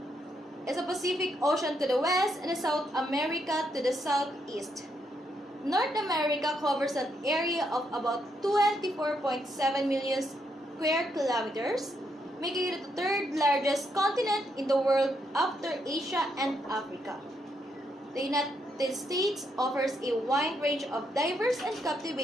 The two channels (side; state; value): both; normal; correlation 0.78